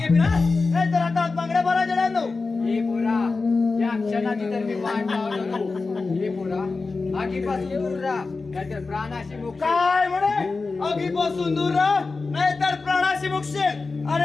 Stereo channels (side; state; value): right; quieter; 4.0 dB